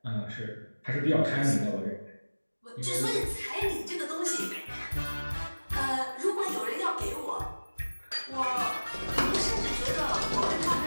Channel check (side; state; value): both; inverted; correlation -1.00